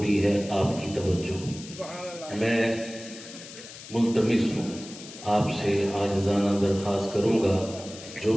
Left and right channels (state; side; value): noise; left; hiss, 15 dB below the sound